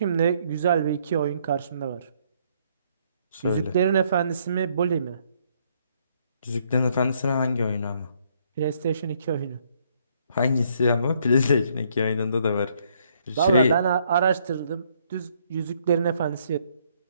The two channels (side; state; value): both; inverted; correlation -0.68